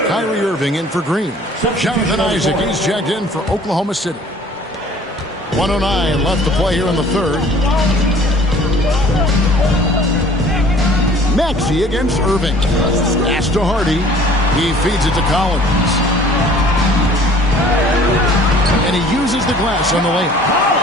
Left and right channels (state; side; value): normal; both; correlation 0.51